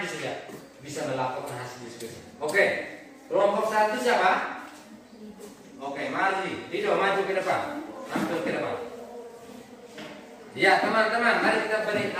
saja. Bisa melaporkan hasil diskusi. Oke. Kelompok satu siapa? Oke, mari. Dido maju ke depan. Tampil ke depan. Ya, teman-teman, mari kita beri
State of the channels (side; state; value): both; identical; correlation 1.00